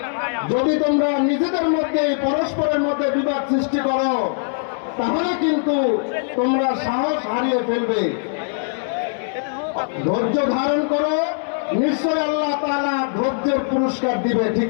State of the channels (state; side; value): silent; right; 65 dB below the other